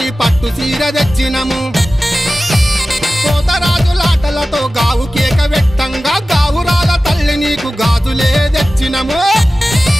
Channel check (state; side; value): normal; both; correlation 0.95